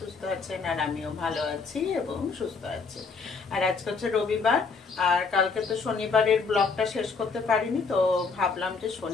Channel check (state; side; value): quieter; right; 4.7 dB